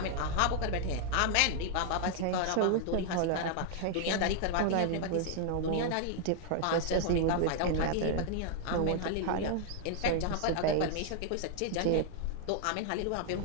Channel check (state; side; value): different; both; correlation 0.00